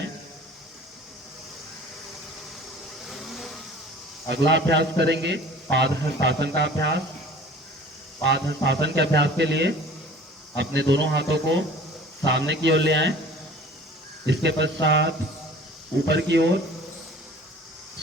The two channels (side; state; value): both; normal; correlation 0.46